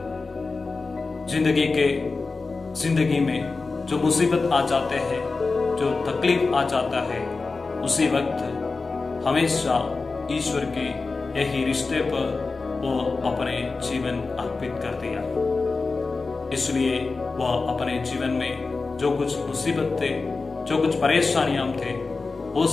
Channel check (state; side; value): quieter; right; 4.0 dB